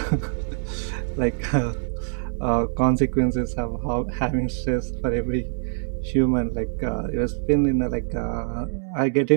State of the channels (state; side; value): silent; left; digital silence